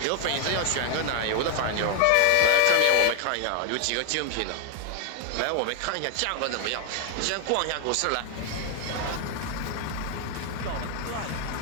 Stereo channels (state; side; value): different; both; correlation 0.00